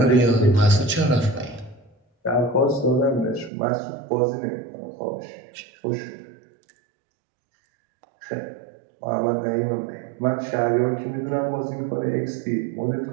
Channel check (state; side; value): drops out; left; at 3.5 s